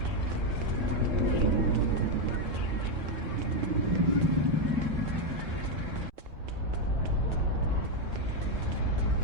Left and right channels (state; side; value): late; left; 3.7 ms